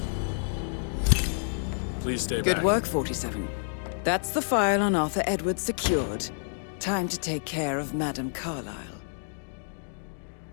Please stay back. Good work, 47. That's the file on Arthur Edwards secured. Time to take care of Madame Carlisle.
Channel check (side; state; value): right; silent; digital silence